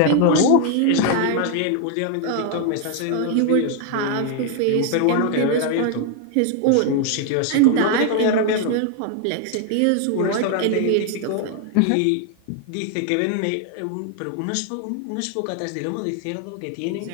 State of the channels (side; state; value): both; different; correlation 0.00